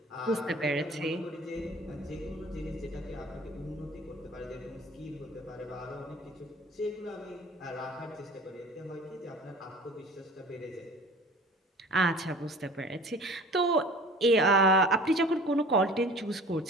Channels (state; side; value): normal; both; correlation 0.44